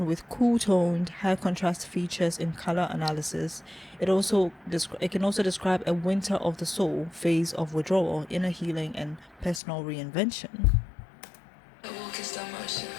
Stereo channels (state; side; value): drops out; right; at 9.6 s